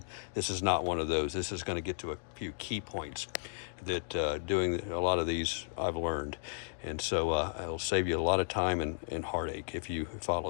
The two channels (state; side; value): silent; right; digital silence